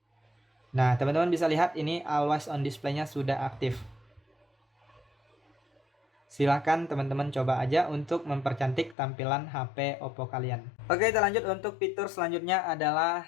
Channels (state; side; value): drops out; right; at 9.0 s